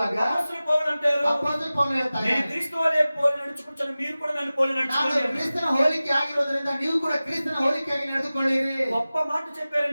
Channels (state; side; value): inverted; both; correlation -0.97